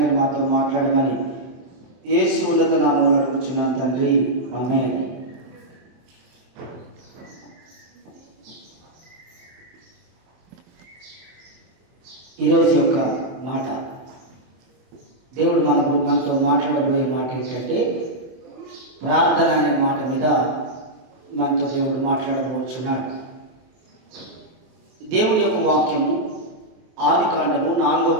మీరు మాతో మాట్లాడమని యేసు ఉన్నత నామములో అడుగుచున్నాను తండ్రి, ఆమేన్. ఈరోజు యొక్క మాట, దేవుడు మనతో మాట్లాడబోయే మాట ఏంటంటే ప్రార్థన అనే మాట మీద మనతో దేవుడు మాట్లాడబోచున్నాడు. దేవుని యొక్క వాక్యము ఆదికాండము 4వ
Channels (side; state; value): left; late; 23 ms